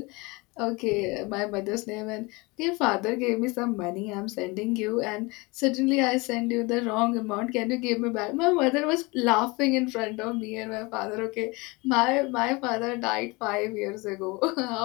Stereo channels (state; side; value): quieter; right; 25.5 dB